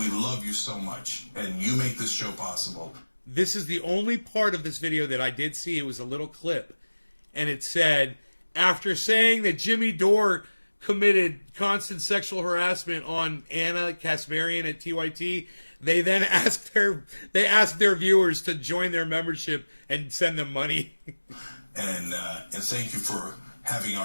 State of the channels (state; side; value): inverted; both; correlation -1.00